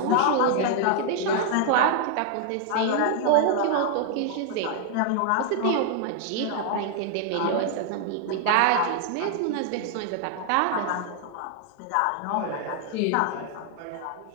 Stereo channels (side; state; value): both; different; correlation 0.00